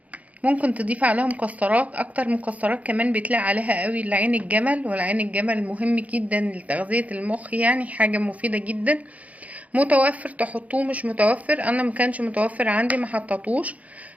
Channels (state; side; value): late; left; 0.069 ms